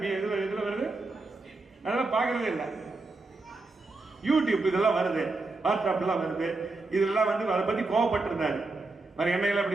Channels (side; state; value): left; quieter; 3.4 dB